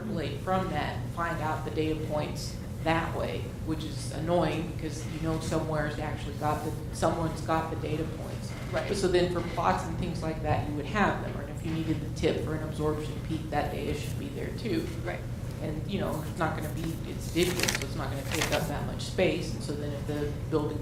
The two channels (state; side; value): identical; both; correlation 1.00